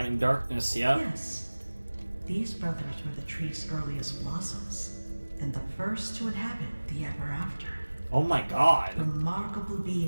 and darkness, yep. Yes, these brothers were the tree's earliest blossoms, and the first to inhabit the ever after. Oh my god. Remarkable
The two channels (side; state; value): both; inverted; correlation -1.00